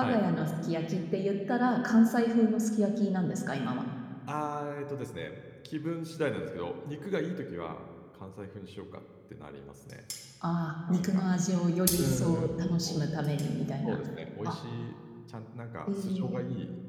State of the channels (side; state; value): both; identical; correlation 1.00